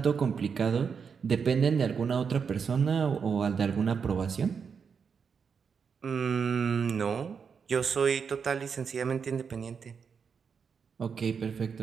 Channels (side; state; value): left; quieter; 6.2 dB